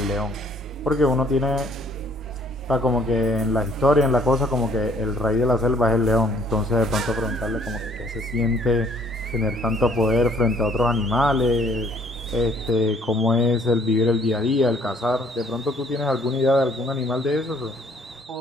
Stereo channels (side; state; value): both; normal; correlation 0.61